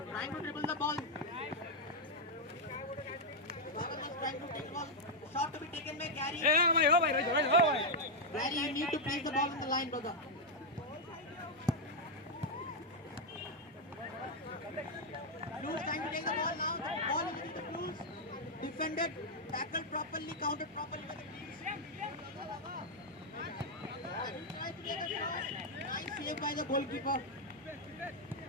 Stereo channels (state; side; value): normal; both; correlation -0.01